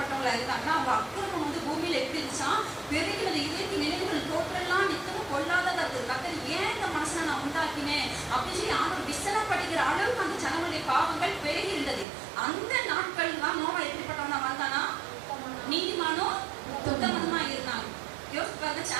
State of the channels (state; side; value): drops out; left; at 12.1 s